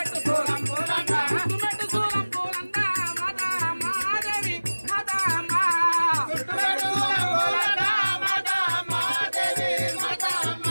సోలం పోలన్నా చుట్టుమెట్టు సోలం పోలన్నా మాతా మాదేవి మాతా మా చుట్టుమెట్టు సోలం పోలన్నా మాతా మాదేవి మాతా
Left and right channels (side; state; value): both; inverted; correlation -1.00